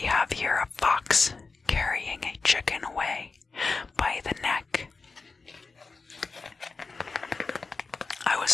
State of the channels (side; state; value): right; quieter; 4.2 dB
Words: have here a fox carrying a chicken away by the neck. I